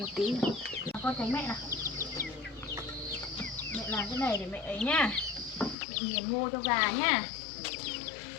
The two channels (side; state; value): right; drops out; at 5.8 s